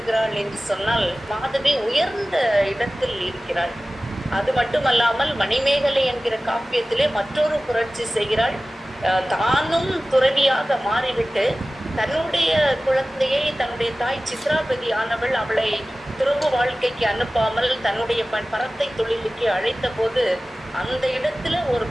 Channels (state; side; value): normal; both; correlation 0.97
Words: என்று சொன்னால் மாதவி உயர்ந்த இடத்தில் இருக்கிறாள். அது மட்டுமல்லாமல் மணிமேகலை என்கிற காப்பியத்திலே மற்றொரு புரட்சி செய்கிறாள். தானும் துறவியாக மாறிவிட்டு தன்னுடைய குழந்தையை தன்னுடைய தாய் சித்ராபதி ஆனவள் அவளை துறவு வாழ்க்கைக்கு அனுப்பாமல் தன்னுடைய பரத்தை தொழிலுக்கு அழைத்த போது அந்த இடத்துல ஒரு